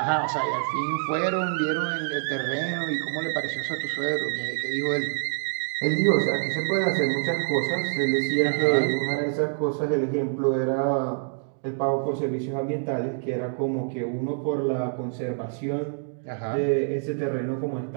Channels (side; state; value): left; silent; digital silence